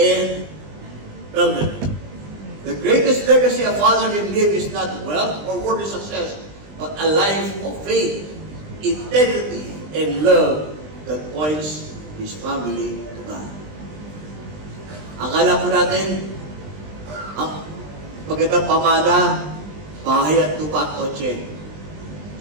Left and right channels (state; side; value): late; left; 20 ms